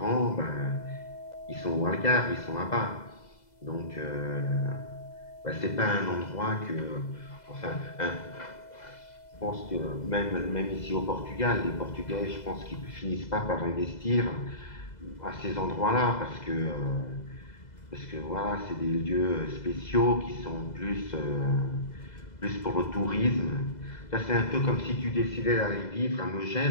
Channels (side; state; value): right; late; 2.0 ms